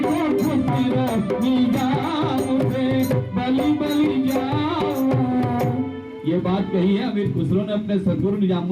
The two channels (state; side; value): identical; both; correlation 1.00